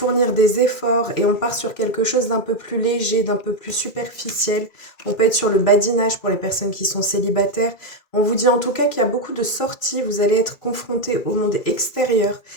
des efforts et on part sur quelque chose d'un peu plus léger, d'un peu plus superficiel. On peut être sur le badinage pour les personnes qui sont célibataires. On vous dit en tout cas qu'il y a beaucoup de sorties, vous allez être confronté au monde extérieur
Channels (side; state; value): right; late; 2.3 ms